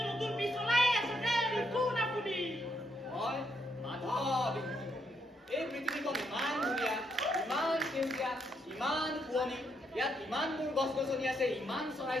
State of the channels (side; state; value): both; normal; correlation 0.76